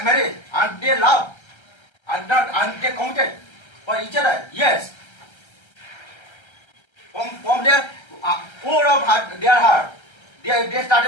and they love, and they committed for each other. Yes. From their core of their heart, they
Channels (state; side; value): late; right; 1.3 ms